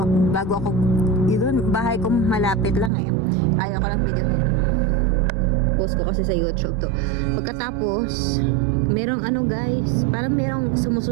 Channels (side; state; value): left; drops out; at 2.9 s